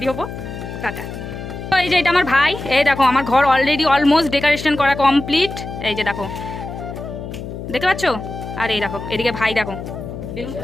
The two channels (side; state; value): left; noise; hum, 9 dB below the sound